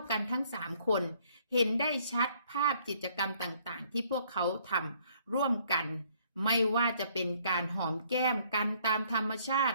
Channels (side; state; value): both; inverted; correlation -0.63